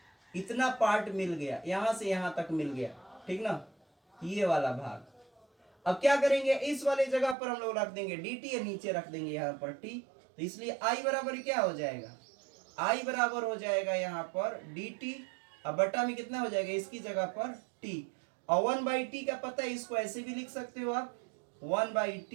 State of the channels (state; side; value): drops out; left; at 7.4 s